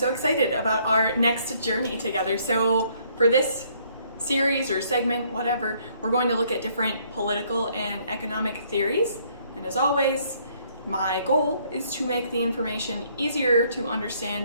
excited about our next journey together. So for this series or segment, whatever, we're going to look at different political and economic theories. And as always, my goal is to make the information easier to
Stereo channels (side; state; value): both; inverted; correlation -0.65